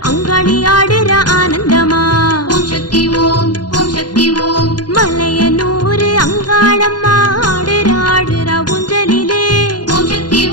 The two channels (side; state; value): right; late; 0.70 ms